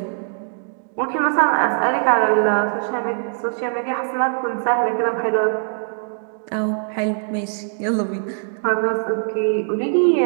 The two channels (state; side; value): silent; left; digital silence